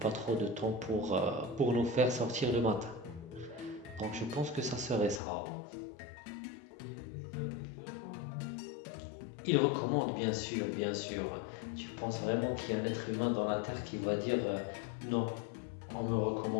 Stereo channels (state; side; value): drops out; right; at 5.2 s